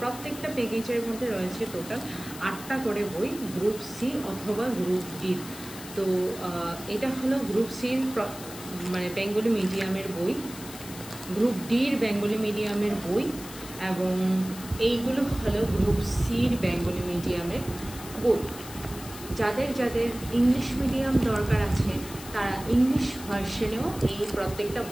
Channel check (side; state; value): left; noise; hiss, 14 dB below the sound